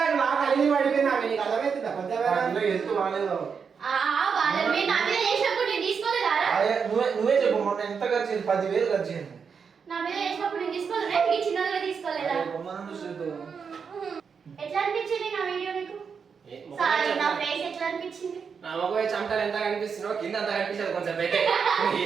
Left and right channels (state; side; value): quieter; left; 6.1 dB